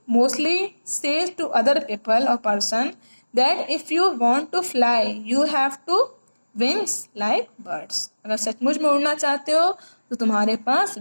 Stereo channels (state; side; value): inverted; both; correlation -1.00